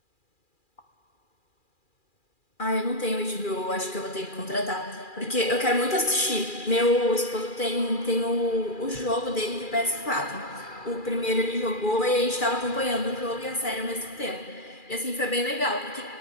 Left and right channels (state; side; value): late; right; 2.4 ms